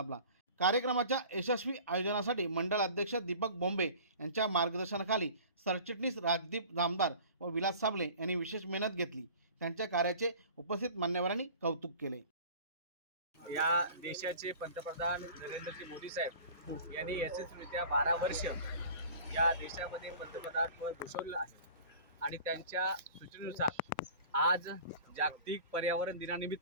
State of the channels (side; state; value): both; inverted; correlation -0.43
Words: कार्यक्रमाच्या यशस्वी आयोजनासाठी मंडळ अध्यक्ष दीपक बोंबे यांच्या मार्गदर्शनाखाली सरचिटणीस राजदीप जामदार व विलास साबळे यांनी विशेष मेहनत घेतली। त्यांच्या कार्याचे उपस्थित मान्यवरांनी कौतुक केले। या देशाचे पंतप्रधान नरेंद्रजी मोदी साहेब यांनी यशस्वीरित्या 12 वर्ष या देशामध्ये पंतप्रधान पद भूषवलं आहे आणि त्यांच्या सूचनेनुसार आज जागतिक पर्यावरण